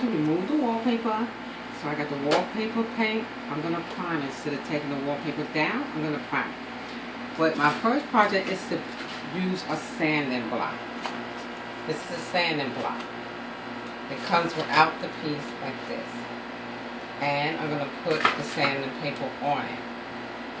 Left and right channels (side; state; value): both; identical; correlation 1.00